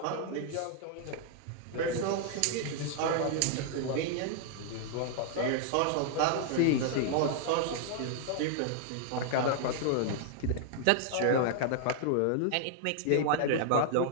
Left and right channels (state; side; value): different; both; correlation -0.01